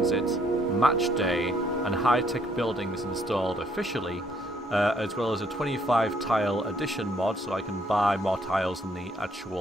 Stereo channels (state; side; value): normal; both; correlation 0.68